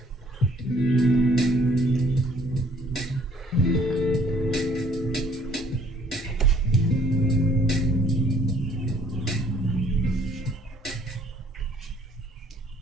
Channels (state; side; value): normal; both; correlation 0.61